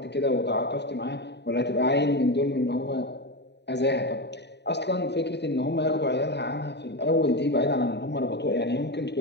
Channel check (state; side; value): late; right; 0.50 ms